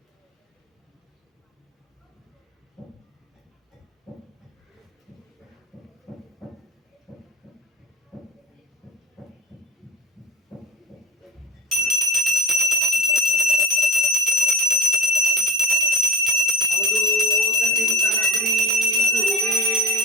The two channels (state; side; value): normal; both; correlation 0.35